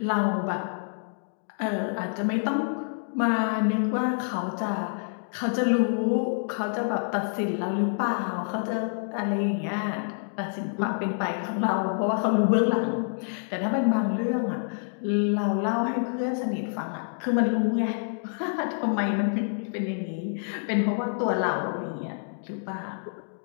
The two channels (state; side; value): silent; right; digital silence